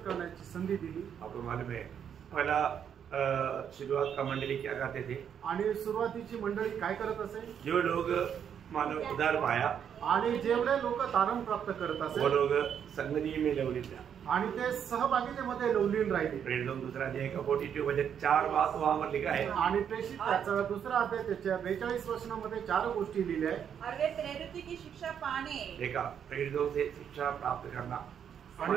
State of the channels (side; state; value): left; quieter; 8.3 dB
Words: संधी दिली। आपको मालूम है पहला शुरुआत का मंडली क्या करते थे आणि सुरुवातीची मंडळी काय करत असे? जो लोग मानो उधार पाया आणि जेवढे लोक तारण प्राप्त करत असे वो लोग संगति में लवलीन था आणि ते सहभागितेमध्ये लवलीन राहिले। प्रेरित लोग दूसरा अध्याय का 42 वचन 4 बात वहां पर लिखा है आणि प्रेषित त्याचा दुसरा अध्याय त्याच्या 42 वचनामध्ये 4 गोष्टी लिहिल्या आहेत। और वे प्रेरित की शिक्षा पाने देखा प्रेरितों से शिक्षा प्राप्त करना